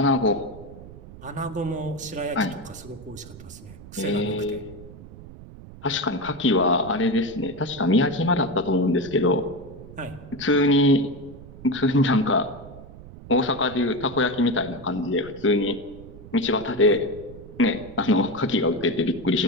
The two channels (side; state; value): right; noise; rumble, 17 dB below the sound